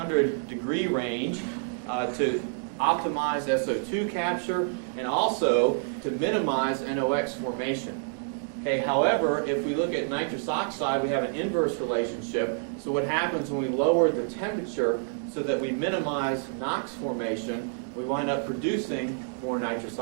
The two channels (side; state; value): left; silent; digital silence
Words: degree range to optimize SO2 capture and also to minimize NOx formation. Okay, however, if we look at nitrous oxide, we have an inverse relationship. So what happens when we lower the temperature so that we minimize NOx formation, we wind up producing more nitrous